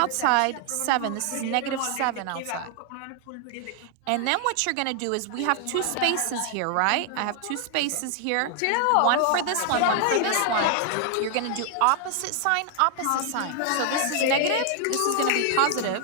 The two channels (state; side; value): different; both; correlation 0.00